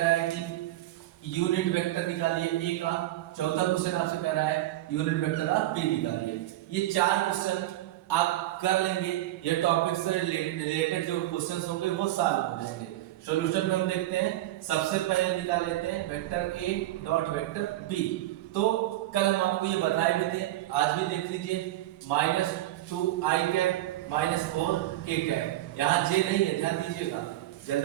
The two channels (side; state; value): left; quieter; 15.4 dB